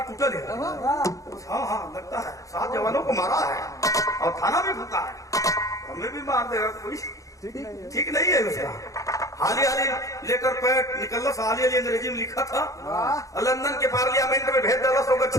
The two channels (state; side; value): late; right; 0.16 ms